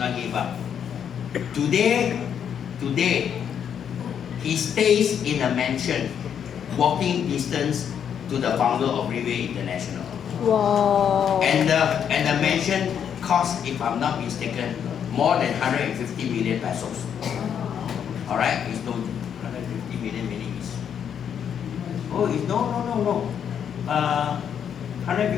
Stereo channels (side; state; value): right; quieter; 8.3 dB